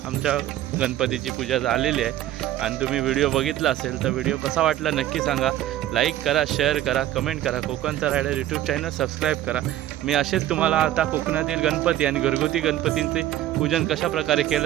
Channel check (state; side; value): quieter; left; 13.2 dB